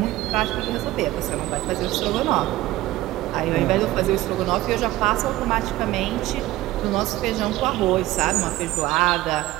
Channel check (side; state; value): left; quieter; 16.7 dB